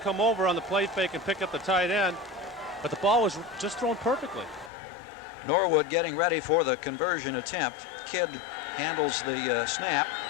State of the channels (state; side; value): drops out; right; at 4.7 s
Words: over on the play fake and pick up the tight end. But the ball was just thrown perfectly. Norwood getting ready for the conversion attempt. Kidd handles the snap.